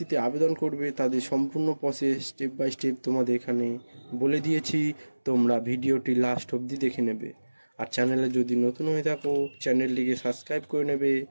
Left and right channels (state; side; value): inverted; both; correlation -1.00